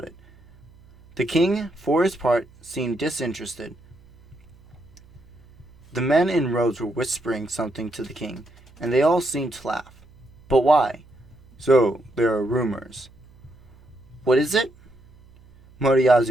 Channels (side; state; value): right; noise; hum, 26 dB below the sound